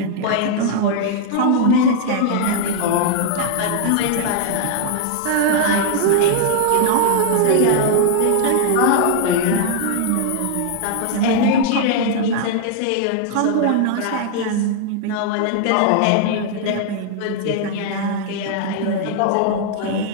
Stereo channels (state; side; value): different; both; correlation 0.00